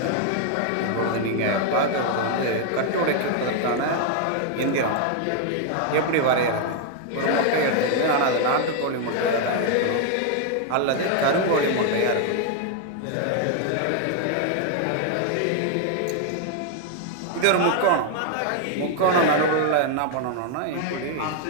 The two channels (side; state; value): both; different; correlation 0.00